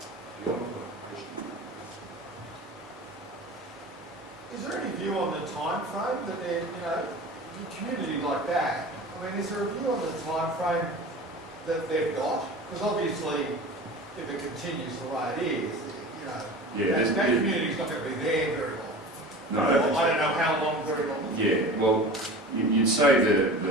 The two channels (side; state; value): both; normal; correlation 0.36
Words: Is there any view on the time frame that they're, a community like that, I mean, is there a view on the time frame that they've got? Because obviously, if it continues the way it is, that community's not going to be there very long. No, I don't know how long, very long. Yeah, well, you'd say